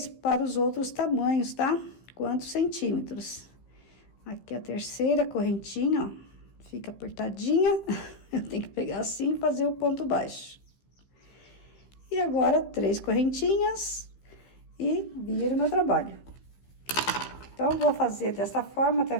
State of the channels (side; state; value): right; late; 15 ms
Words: para os outros tamanhos, tá? Quantos centímetros. Aqui a terceira correntinha, ó, fica apertadinha. Eu tenho que pegar assim e fazer o ponto baixo. E agora, 3 correntinhas e viro meu trabalho. Então, vou fazer dessa forma até